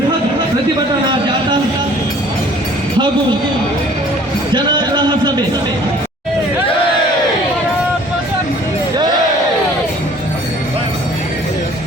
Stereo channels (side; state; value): both; normal; correlation 0.53